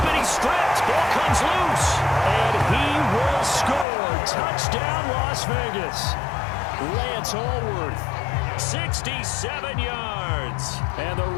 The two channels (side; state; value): right; drops out; at 3.9 s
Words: it, he's stripped. Ball comes loose. And he will score. Touchdown, Las Vegas. Lance Allworth, 67 yards. And the